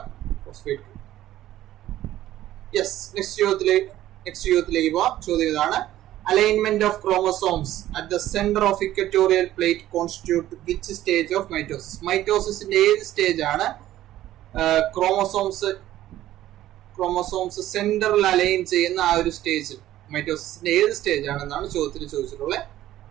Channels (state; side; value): quieter; left; 13.8 dB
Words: phosphate group. Yes. Next ചോദ്യത്തിലേക്ക് പോവാം. ചോദ്യം ഇതാണ്: alignment of chromosomes at the centre of equatorial plate constitute which stage of mitosis? മൈറ്റോസിന്റെ ഏത് സ്റ്റേജ് ആണ് ക്രോമസോംസ് സെന്ററിൽ അലൈൻ ചെയ്യുന്ന ആ ഒരു സ്റ്റേജ്? മൈറ്റോസിന്റെ ഏത് സ്റ്റേജ് ആണെന്നാണ് ചോദ്യത്തിൽ ചോദിച്ചിട്ടുള്ളത്.